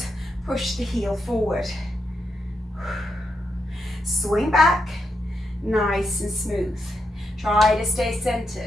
Push the heel forward. Swing back, nice and smooth. Try to stay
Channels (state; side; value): normal; both; correlation 0.83